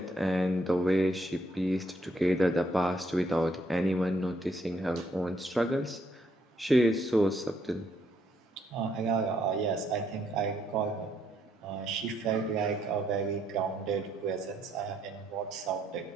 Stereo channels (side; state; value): both; normal; correlation 0.72